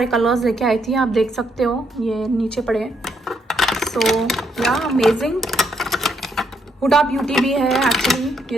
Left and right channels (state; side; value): normal; both; correlation 0.74